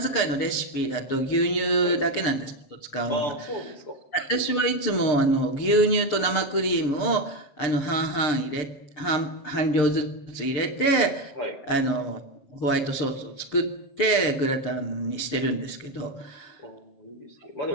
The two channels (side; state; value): right; late; 6.7 ms